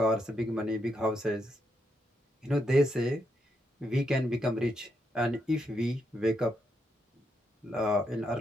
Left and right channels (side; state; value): both; normal; correlation 0.80